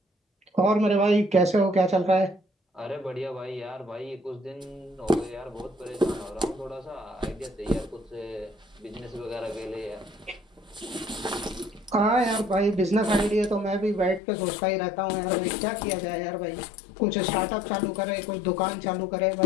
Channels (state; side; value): drops out; right; at 14.2 s